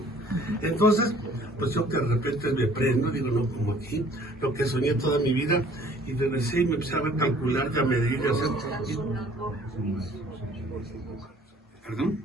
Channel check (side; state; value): both; normal; correlation 0.55